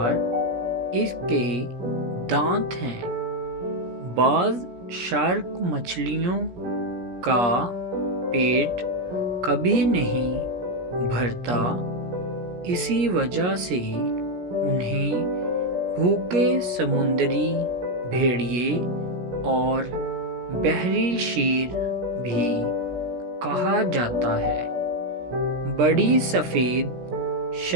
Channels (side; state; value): left; late; 17 ms